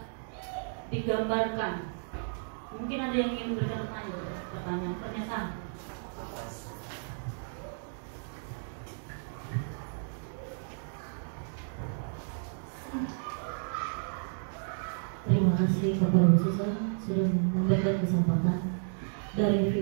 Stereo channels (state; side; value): silent; left; digital silence